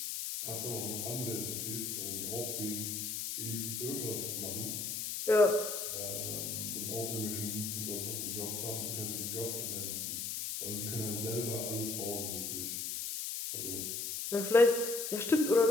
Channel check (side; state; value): left; noise; hiss, 3 dB below the sound